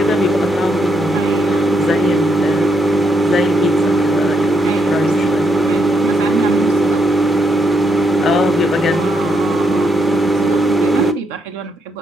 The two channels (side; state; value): both; normal; correlation 0.78